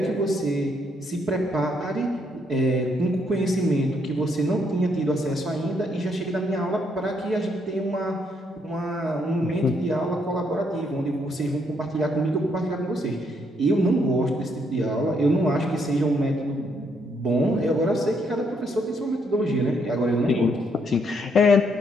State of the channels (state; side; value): normal; both; correlation 0.73